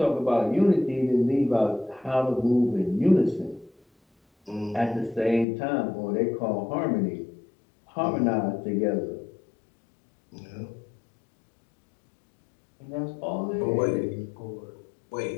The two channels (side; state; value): right; drops out; at 5.5 s